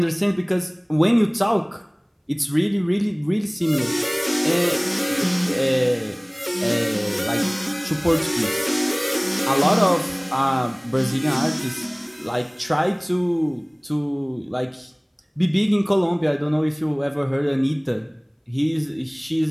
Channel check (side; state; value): both; identical; correlation 1.00